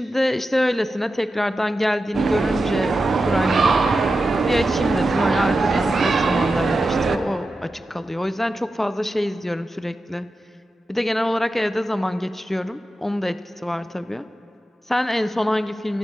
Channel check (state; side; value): normal; both; correlation 0.91